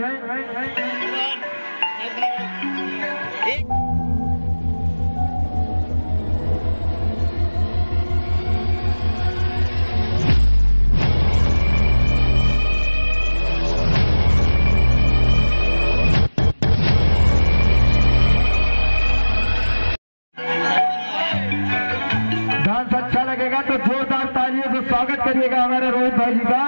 डांस अच्छा लगेगा तो जोरदार तालियों से स्वागत करिएगा हमारे रोहित भाई जी का।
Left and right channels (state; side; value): inverted; both; correlation -1.00